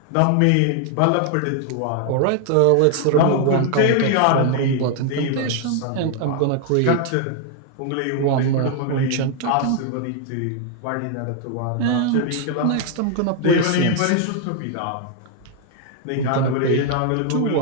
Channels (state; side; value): different; both; correlation 0.00